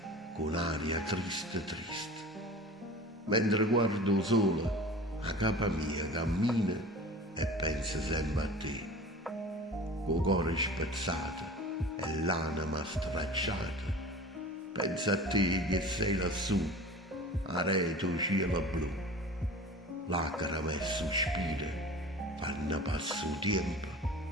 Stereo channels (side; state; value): both; normal; correlation 0.38